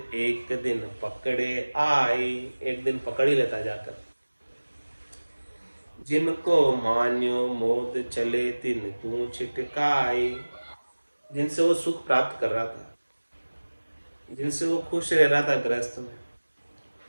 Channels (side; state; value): both; inverted; correlation -1.00